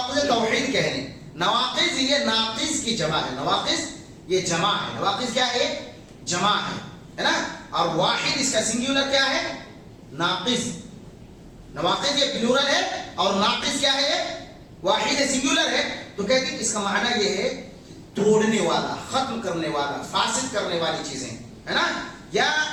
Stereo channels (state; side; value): identical; both; correlation 1.00